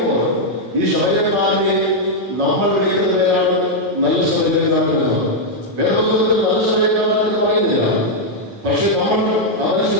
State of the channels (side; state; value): left; late; 9.0 ms